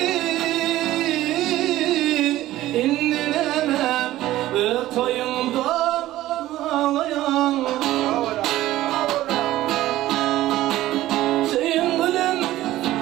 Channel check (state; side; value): quieter; left; 15.2 dB